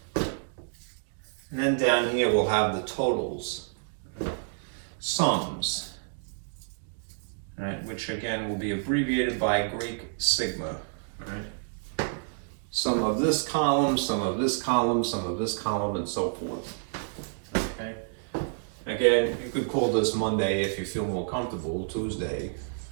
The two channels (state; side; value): silent; left; digital silence